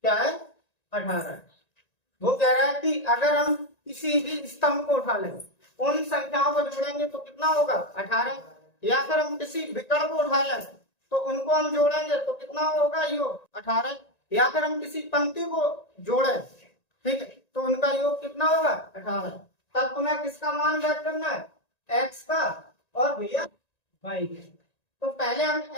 क्या है? 18 है। वो कह रहा है कि अगर हम किसी भी स्तंभ को उठा लें, उन संख्याओं को जोड़ेंगे तो कितना होगा? 18। या फिर हम किसी विकर्ण को उठा लें तो उनको हम जोड़ेंगे तो कितना होगा योग 18। या फिर हम किसी पंक्ति को जोड़े, ठीक है, तो उनका योग कितना होगा 18। तब तुम्हें किसका मान ज्ञात करना है, x का और भैया y। तो पहले हम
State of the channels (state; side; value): late; right; 1.9 ms